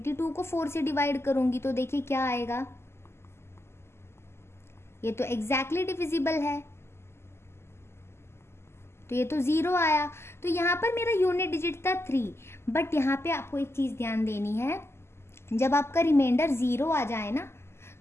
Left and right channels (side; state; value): right; late; 0.12 ms